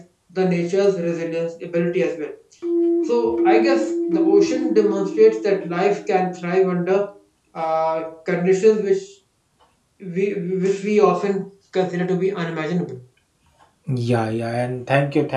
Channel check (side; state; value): both; identical; correlation 1.00